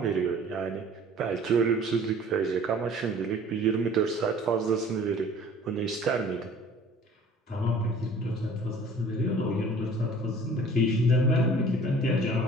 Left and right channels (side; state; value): both; normal; correlation 0.49